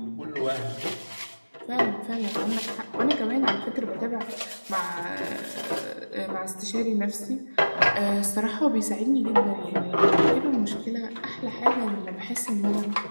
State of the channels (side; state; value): both; inverted; correlation -1.00